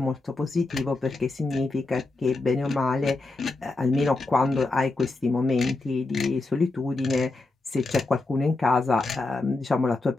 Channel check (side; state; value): right; quieter; 3.3 dB